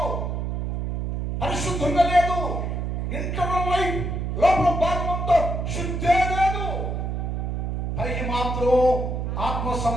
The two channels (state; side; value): noise; right; hum, 2 dB below the sound